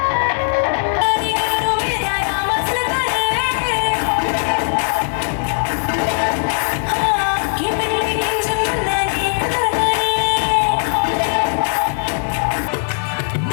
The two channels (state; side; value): silent; right; digital silence